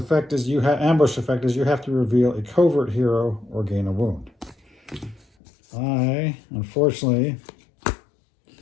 is ambush effect is you have to reveal a covert hero or gain a wound. I, unfortunately,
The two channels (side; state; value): right; drops out; at 5.2 s